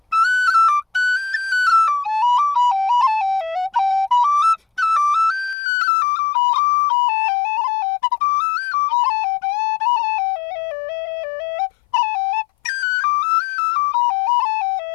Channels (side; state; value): right; drops out; at 5.6 s